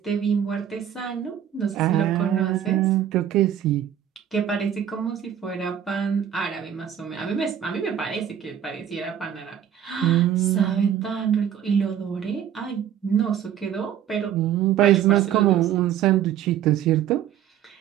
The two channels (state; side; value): quieter; left; 9.8 dB